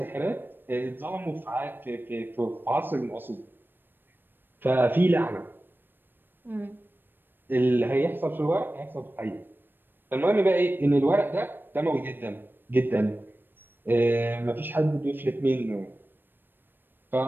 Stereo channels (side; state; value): left; late; 0.095 ms